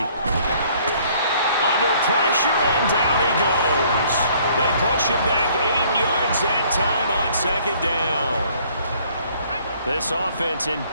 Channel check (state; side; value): inverted; both; correlation -0.60